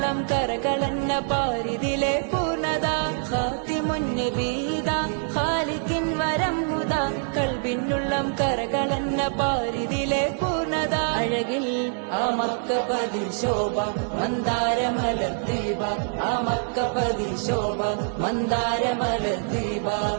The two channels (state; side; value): silent; left; 62 dB below the other